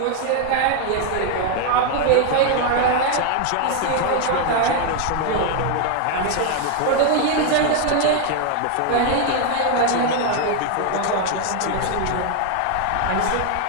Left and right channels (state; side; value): different; both; correlation 0.00